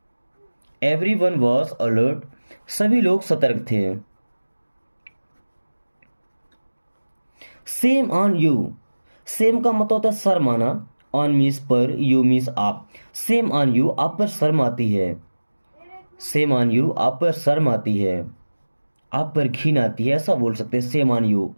एवरीवन वॉज अलर्ट, सभी लोग सतर्क थे। Same on you. सेम का मतलब होता है शर्म आना, ऑन मीन्स पर, यू मीन्स आप। सेम ऑन यू, आप पर शर्म आती है। सेम ऑन यू, आप पर शर्म आती है, आप पर घिन आती है, ऐसा बोल सकते हैं। सेम ऑन यू,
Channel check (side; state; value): both; inverted; correlation -1.00